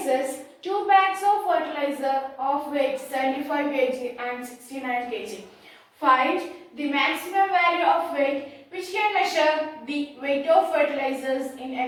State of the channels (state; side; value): identical; both; correlation 1.00